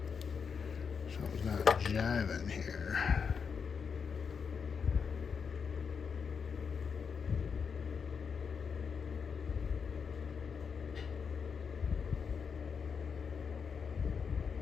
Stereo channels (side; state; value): right; quieter; 6.1 dB